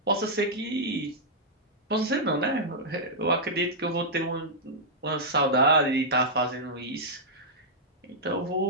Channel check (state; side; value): normal; both; correlation -0.09